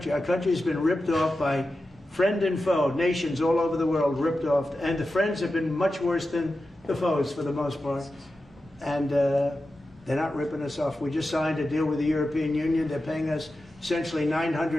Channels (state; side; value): normal; both; correlation 0.92